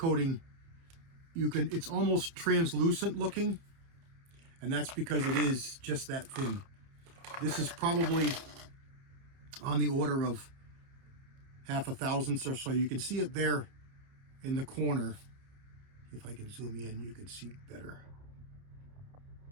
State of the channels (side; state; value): left; late; 30 ms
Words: it's almost translucent looking, and that's because it is just that thin. This is probably on the order of 1/2 thousandths or so. You can see it there in the corner. If I can zoom in, you can see better.